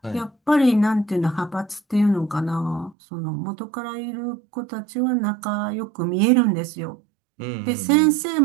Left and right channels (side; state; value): left; drops out; at 3.0 s